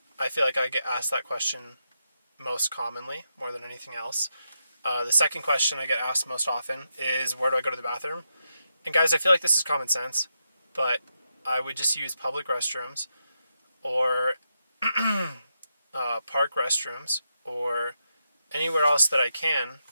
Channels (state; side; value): inverted; both; correlation -0.84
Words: I feel like I get asked that question most commonly, more than anything else. The second question I get asked most often is, where do I go to the bathroom? And guys, I feel like this is common sense, but I would just use public restrooms or park restrooms or anywhere else that I can